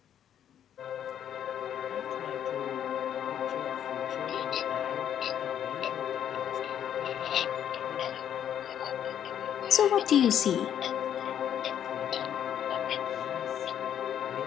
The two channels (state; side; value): quieter; right; 9.8 dB